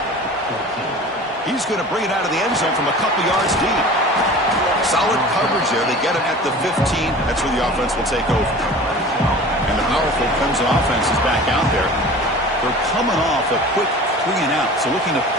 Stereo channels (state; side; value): normal; both; correlation 0.40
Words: He's going to bring it out of the end zone from a couple yards deep. Solid coverage there. They get him at the 15. That's where the offense will take over. And the powerful Clemson offense is back out there. They're coming off a quick 3 and out. So looking to